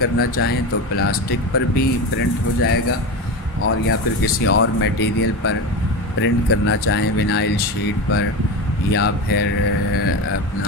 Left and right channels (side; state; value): both; normal; correlation 0.22